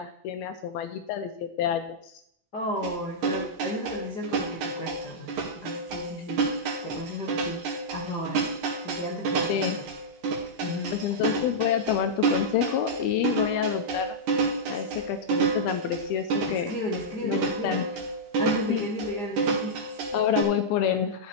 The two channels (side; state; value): both; normal; correlation -0.10